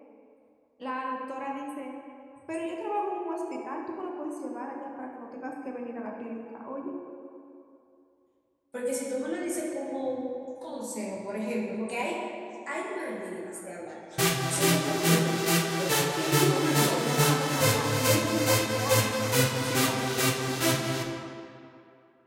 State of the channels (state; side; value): identical; both; correlation 1.00